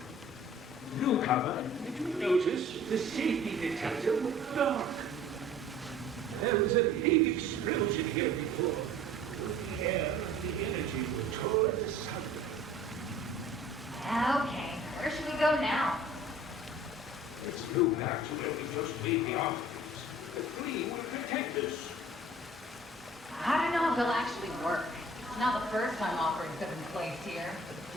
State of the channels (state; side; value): normal; both; correlation 0.49